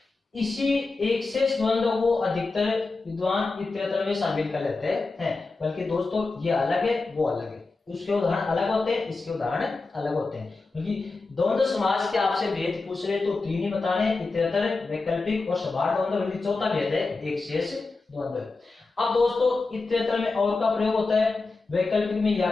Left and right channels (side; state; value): right; quieter; 3.7 dB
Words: इसी एक शेष द्वंद्व को अधिकतर विद्वान इतरेतर में शामिल कर लेते हैं, बल्कि दोस्तों ये अलग है वो अलग है। उसके उदाहरण अलग होते हैं, इसके उदाहरण अलग होते हैं। क्योंकि द्वंद्व समास के आपसे भेद पूछ रहे तो तीन ही बताने, इतरेतर, वैकल्पिक और समाहार द्वंद्व। बल्कि चौथा भेद है एक शेष द्वंद्व। अब दोस्तों, इतरेतर में और का प्रयोग होता है, वैकल्पिक में या